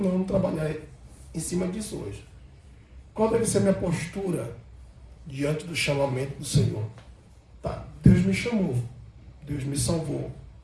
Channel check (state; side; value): identical; both; correlation 1.00